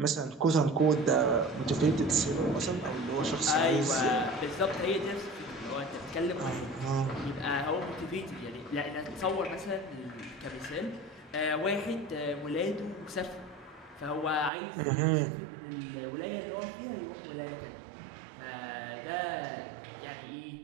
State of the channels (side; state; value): left; drops out; at 14.5 s